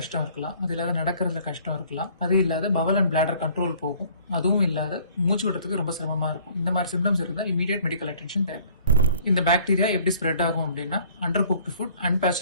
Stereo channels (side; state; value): both; inverted; correlation -0.54